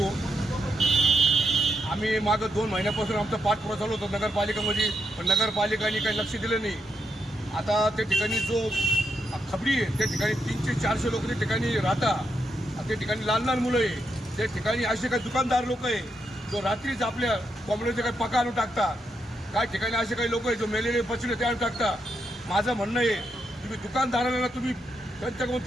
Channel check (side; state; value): both; normal; correlation 0.82